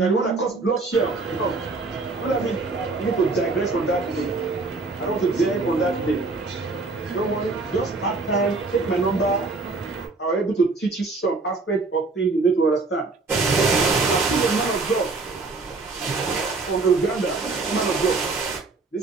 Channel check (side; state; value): left; quieter; 3.8 dB